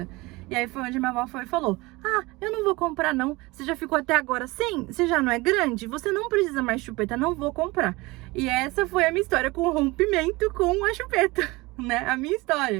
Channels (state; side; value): quieter; left; 22.5 dB